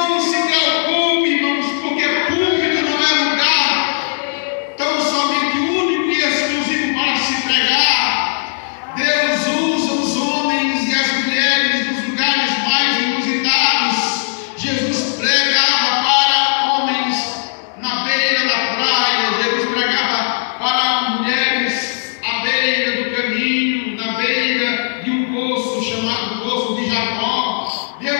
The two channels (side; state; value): right; silent; digital silence